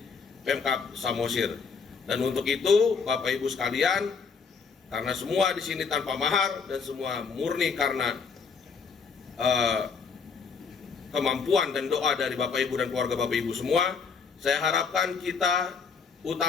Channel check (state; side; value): quieter; right; 5.5 dB